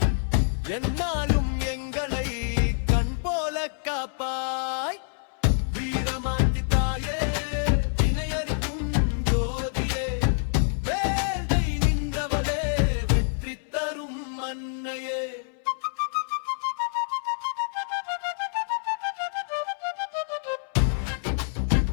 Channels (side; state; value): right; silent; 60 dB below the other